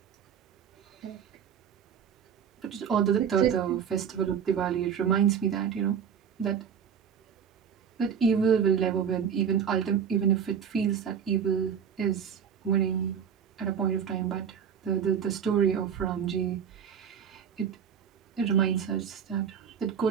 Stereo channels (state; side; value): quieter; left; 7.6 dB